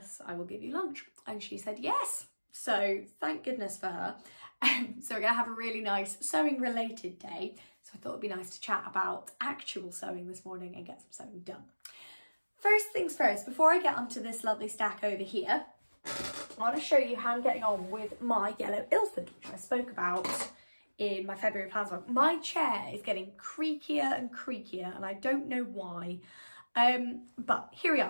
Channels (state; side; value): inverted; both; correlation -1.00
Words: I will give you lunch. And she said, yes. So thank goodness for her. So we're gonna have a really nice sewing related day. So I thought it'd be nice to chat about actual sewing this morning and get some sewing done. First things first, before I get onto this lovely stack over here, I want to show you how I'm getting on with my yellow Ilford, which I spoke about in my February plans vlog. My chair is getting creakier and creakier and I don't know why, but here we